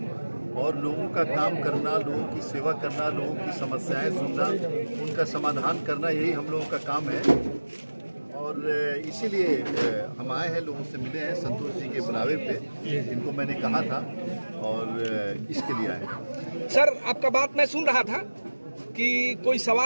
और लोगों का काम करना, लोगों की सेवा करना, लोगों की समस्याएं सुनना, उनका समाधान करना, यही हम लोगों का काम है। और इसीलिए हम आए हैं, लोगों से मिले हैं संतोष जी के बुलावे पे, जिनको मैंने कहा था, और इसके लिए आए। सर, आपका बात मैं सुन रहा था कि कोई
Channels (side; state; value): both; inverted; correlation -1.00